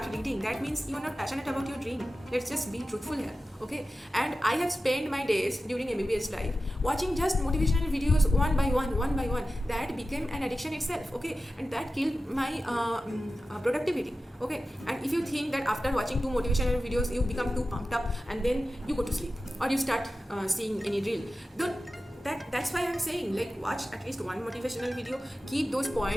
reading. That means you are not passionate about your dream. Let's just be truthful here, okay? And I have spent my days during MBBS life watching just motivational videos one by one. That became an addiction itself, okay? And that killed my productivity, okay? And if you think that after watching 2 motivational videos you become too pumped up and then you go to sleep or you start seeing any reel, that's why I'm saying, like, watch at least one motivational video, keep those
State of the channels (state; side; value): normal; both; correlation 0.94